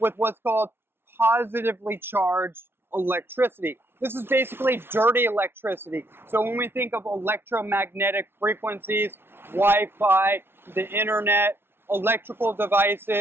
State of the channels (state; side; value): late; left; 0.11 ms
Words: what's called positively charged electricity. This is basically dirty electricity. So when we think of electromagnetic frequencies, Wi-Fi, the internet, electrical